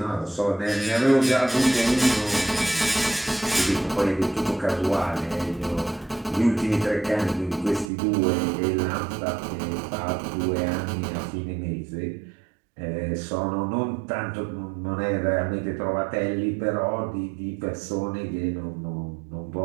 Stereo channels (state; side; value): drops out; left; at 7.9 s